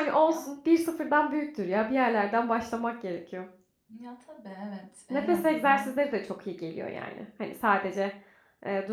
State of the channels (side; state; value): both; identical; correlation 1.00